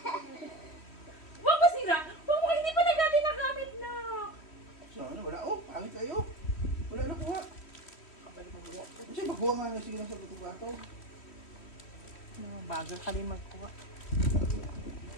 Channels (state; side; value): late; right; 3.1 ms